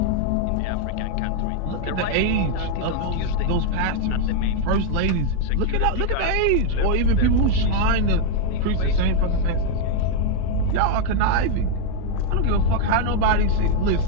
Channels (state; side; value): different; both; correlation 0.00